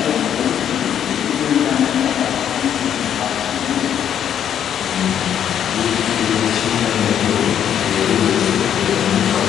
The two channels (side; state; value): right; quieter; 9.4 dB